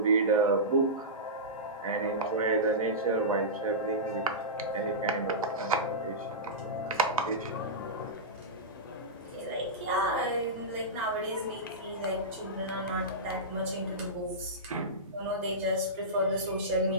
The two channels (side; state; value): both; normal; correlation -0.15